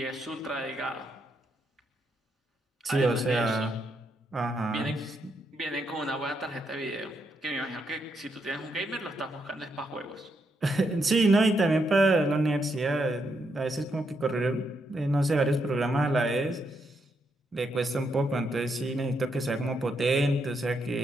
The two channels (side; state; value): both; normal; correlation 0.79